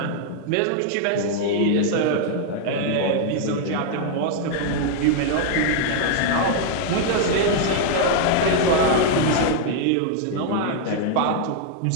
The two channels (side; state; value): both; different; correlation 0.00